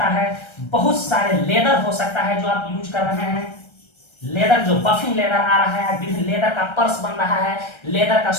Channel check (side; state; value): right; late; 1.3 ms